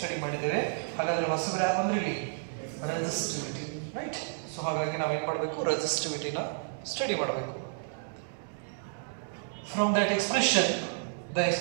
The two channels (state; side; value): silent; left; digital silence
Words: ಮಾಡಿದ್ದೇವೆ. ಹಾಗಾದ್ರೆ ಹೊಸಬ್ರು ಯಾರು ಅಂದ್ರೆ ಇಲ್ಲಿ ರೆಸಿಸ್ಟಿವಿಟಿ, ರೈಟ್? ಸೊ ಹಾಗಾಗಿ ನಾವು ಏನು ಮಾಡಬೇಕು? ರೆಸಿಸ್ಟಿವಿಟಿನ ಸ್ಟಡಿ ಮಾಡಬೇಕು. From that expression, the